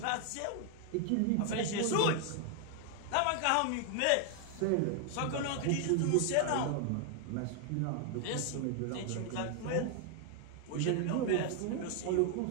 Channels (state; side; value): different; both; correlation 0.00